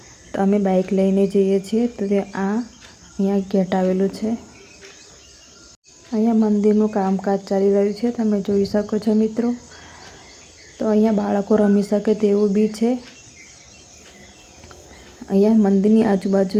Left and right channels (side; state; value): both; identical; correlation 1.00